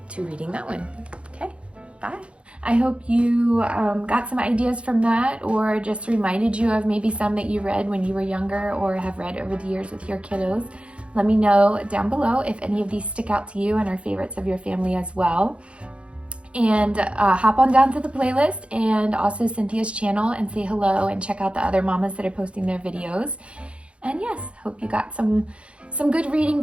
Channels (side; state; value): left; late; 0.060 ms